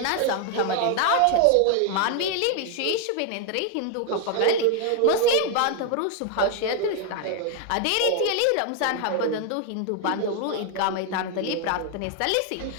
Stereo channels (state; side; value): different; both; correlation 0.00